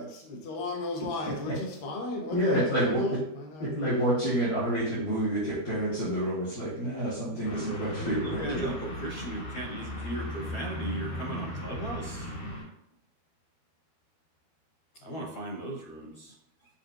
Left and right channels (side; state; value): right; late; 12 ms